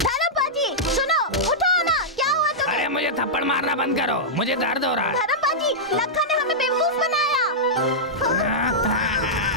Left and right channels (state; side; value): normal; both; correlation -0.10